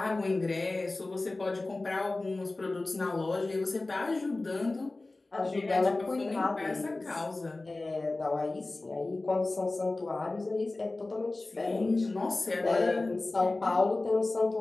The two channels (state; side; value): quieter; right; 3.1 dB